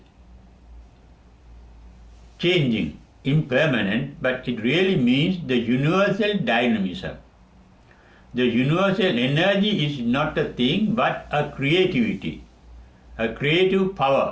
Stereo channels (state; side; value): identical; both; correlation 1.00